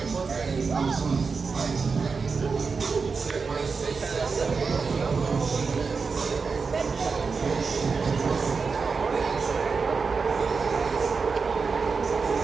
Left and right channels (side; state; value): left; quieter; 4.9 dB